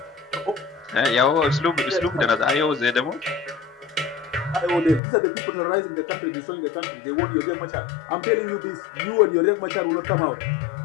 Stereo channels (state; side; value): drops out; right; at 5.0 s